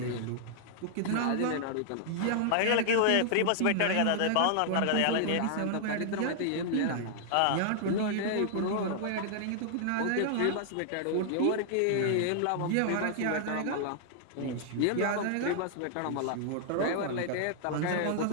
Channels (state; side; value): different; both; correlation -0.01